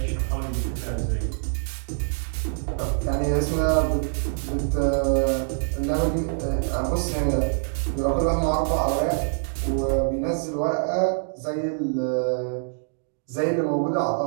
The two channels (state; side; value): silent; left; digital silence